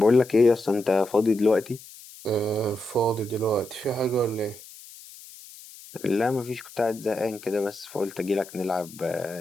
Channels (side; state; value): left; noise; hiss, 19 dB below the sound